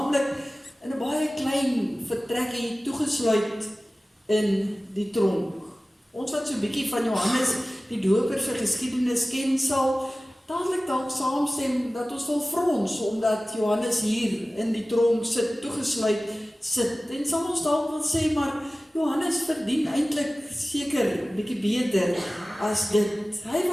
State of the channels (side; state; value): both; normal; correlation 0.97